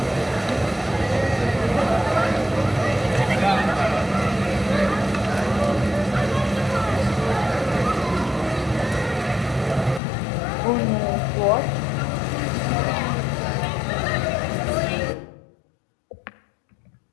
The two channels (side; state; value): right; drops out; at 10.0 s